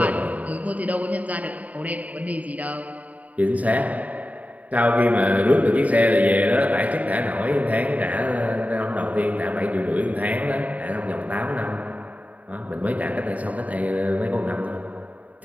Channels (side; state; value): left; late; 0.071 ms